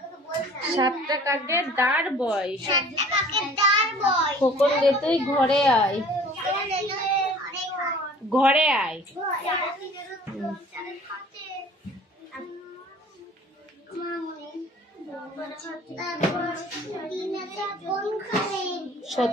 7টা কাকের দাঁড় বয়। খোকন গে তুই ঘরে আয়, ঘরে আয়।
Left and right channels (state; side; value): normal; both; correlation 0.49